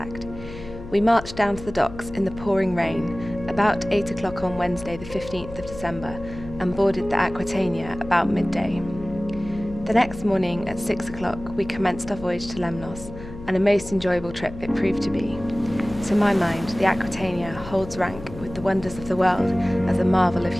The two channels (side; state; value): left; noise; hum, 13 dB below the sound